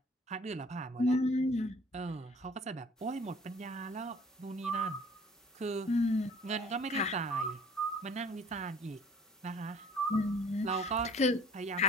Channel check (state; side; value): normal; both; correlation 0.52